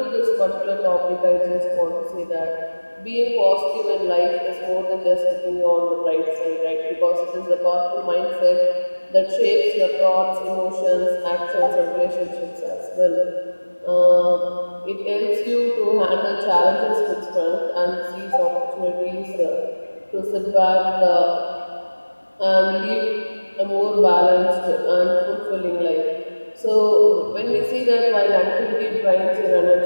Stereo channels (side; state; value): both; inverted; correlation -1.00